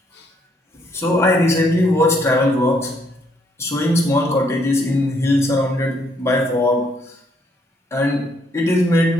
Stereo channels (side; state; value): both; normal; correlation 0.70